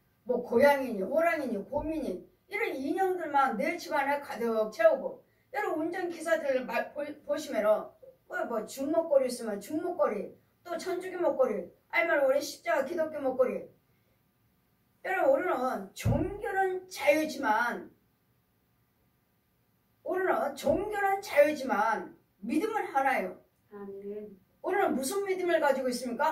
뭐 고양이니 호랑이니 곰이니 이런 인형들만 내 집안에 가득 채우고, 여러분 운전기사들 보시면은 뭐 중목걸이 있으면 중목걸이, 또 천주교 목걸이, 아니면 우리 십자가 기독교 목걸이. 여러분 우리는 종교는 자유지만 믿음은 하나예요. 아멘. 우리는 무슨 믿음을 가지고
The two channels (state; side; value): identical; both; correlation 1.00